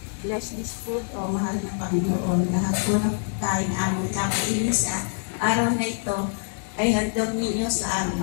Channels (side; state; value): right; silent; 62 dB below the other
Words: bless this food, O mahal na Panginoon. Lahat po ng kain aming kakainin sa araw na ito ay handog ninyo sa